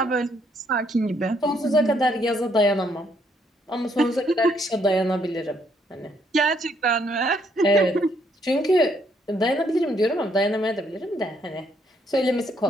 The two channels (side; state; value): both; normal; correlation 0.70